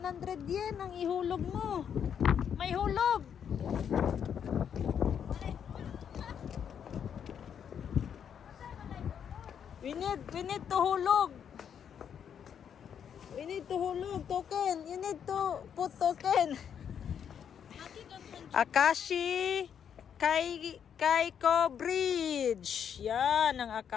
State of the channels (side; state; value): right; quieter; 8.2 dB